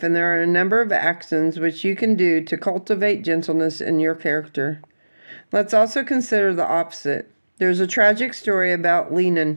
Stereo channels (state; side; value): inverted; both; correlation -1.00